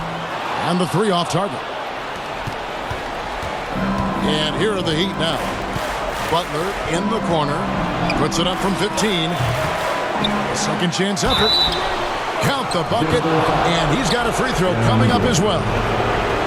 And the 3 off target. And here are the Heat now. Butler in the corner. Puts it up from 15. Second chance effort. Count the bucket. And he's got a free throw coming up as well.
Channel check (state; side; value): identical; both; correlation 1.00